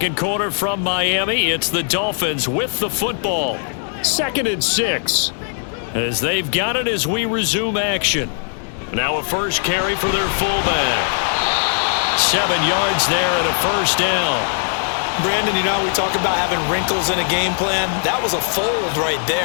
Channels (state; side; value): silent; right; digital silence